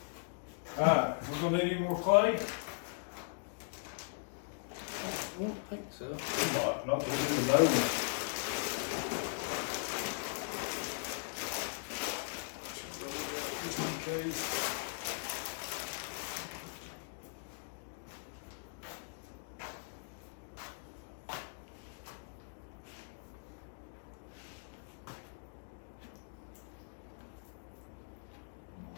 Alright, we're gonna need any more clay? I don't think so. Not to do the nose. Just in case.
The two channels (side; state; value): right; silent; digital silence